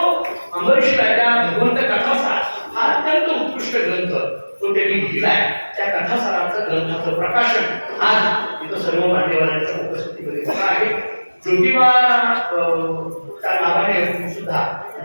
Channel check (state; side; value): inverted; both; correlation -1.00